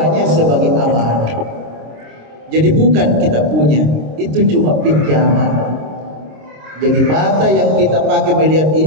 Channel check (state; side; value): late; left; 26 ms